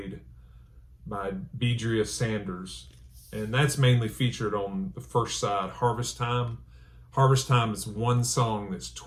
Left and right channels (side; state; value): both; identical; correlation 1.00